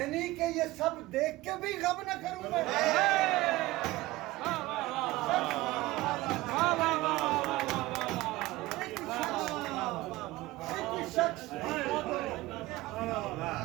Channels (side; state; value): left; quieter; 18.8 dB